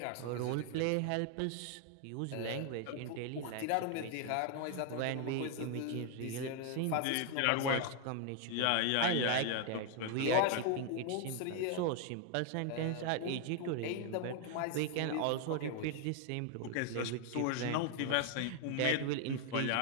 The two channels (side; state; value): both; different; correlation 0.00